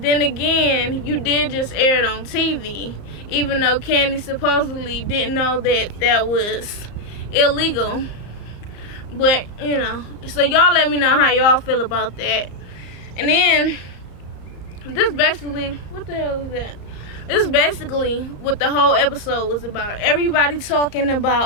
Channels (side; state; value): right; late; 34 ms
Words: then again, you did just air it on TV, even though Candy supposedly didn't know that that was illegal. But, you know, so y'all let me know how y'all feel about that. And then, this basically, what the hell is that? This is basically what the whole episode was about. Everybody talking